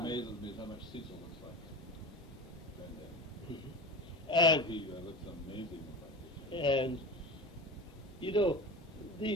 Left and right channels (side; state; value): both; normal; correlation 0.31